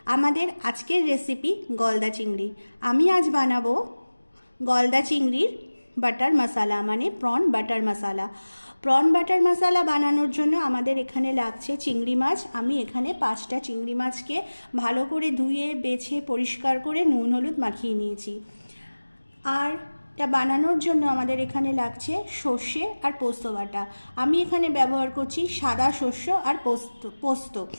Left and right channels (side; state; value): both; inverted; correlation -1.00